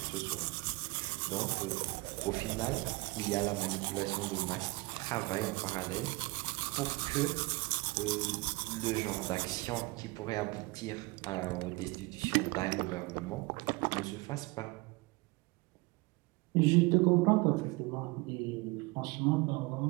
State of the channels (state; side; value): quieter; left; 24.4 dB